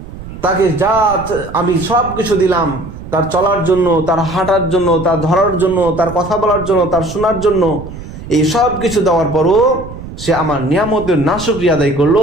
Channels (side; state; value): right; noise; rumble, 12 dB below the sound